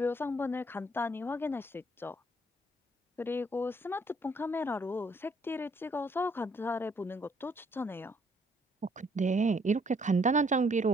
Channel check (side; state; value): both; normal; correlation 0.66